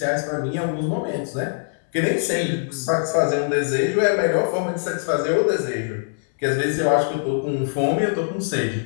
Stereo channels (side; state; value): right; silent; 63 dB below the other